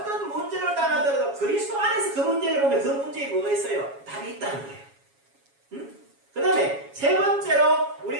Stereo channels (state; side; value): late; left; 7.2 ms